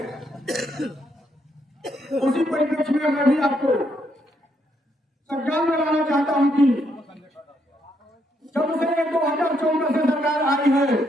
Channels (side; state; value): both; normal; correlation 0.75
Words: उसी परिप्रेक्ष्य में मैं भी आपको संज्ञान में लाना चाहता हूं कि जब से 2014 से सरकार आई है,